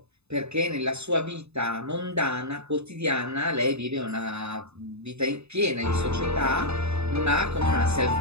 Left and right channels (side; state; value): left; late; 0.80 ms